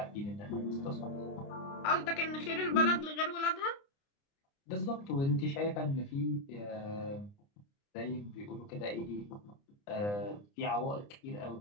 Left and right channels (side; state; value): right; late; 29 ms